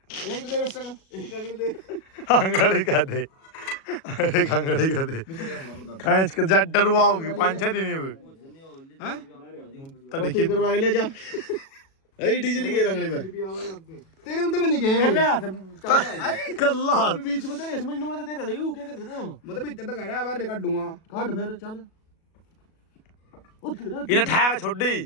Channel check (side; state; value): right; late; 37 ms